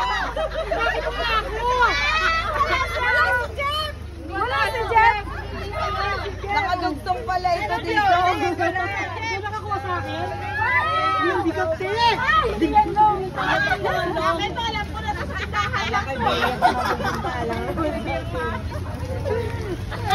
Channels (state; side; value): identical; both; correlation 1.00